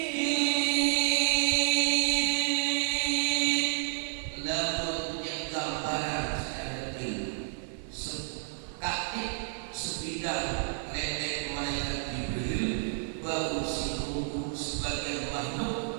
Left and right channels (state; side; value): silent; left; 57 dB below the other